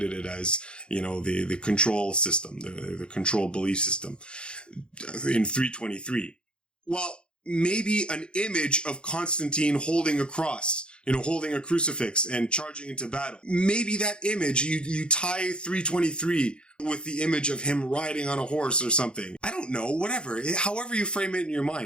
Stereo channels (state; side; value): late; right; 0.053 ms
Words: it as, the control system, the control belief system in 323. Well, maybe an image of Constantine holding a cross holding a crucifix and charging into battle. Maybe that image, you tie 323 with the image of him riding on a horse or something. I don't know, whatever. However you frame it in your